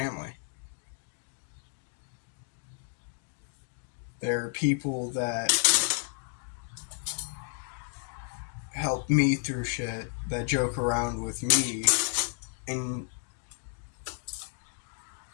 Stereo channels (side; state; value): right; silent; 57 dB below the other